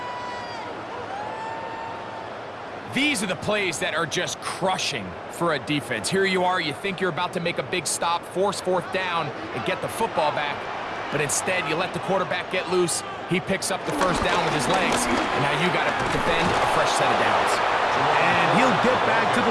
These are the plays that are just crushing for a defense. Here you are, you think you're about to make a big stop, force fourth down, and get the football back. But instead, you let the quarterback get loose. He picks up the first down with his legs, and now you got to defend a fresh set of downs. And he'll get back to the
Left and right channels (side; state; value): both; identical; correlation 1.00